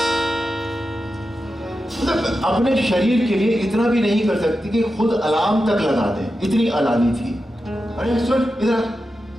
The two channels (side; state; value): both; normal; correlation 0.90